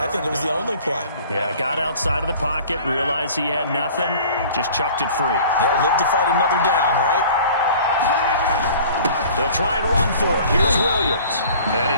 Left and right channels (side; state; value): both; inverted; correlation -0.47